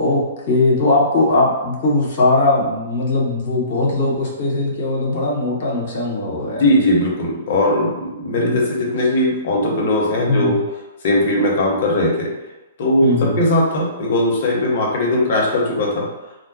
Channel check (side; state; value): both; inverted; correlation -0.47